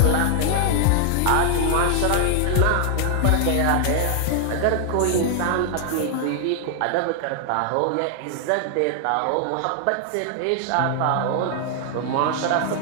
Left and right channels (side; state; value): both; different; correlation 0.00